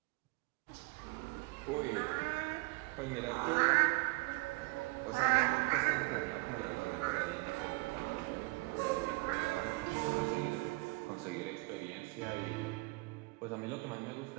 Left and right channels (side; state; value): left; quieter; 25.8 dB